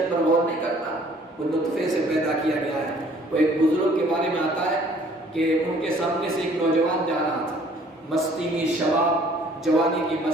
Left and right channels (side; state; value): both; normal; correlation 0.57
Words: پر غور نہیں کرتا، وہ نطفے سے پیدا کیا گیا ہے۔ وہ ایک بزرگ کے بارے میں آتا ہے کہ ان کے سامنے سے ایک نوجوان جا رہا تھا، مستی میں، شباب جوانی کی